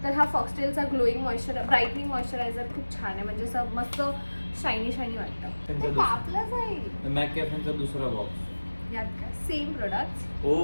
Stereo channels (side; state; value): both; inverted; correlation -1.00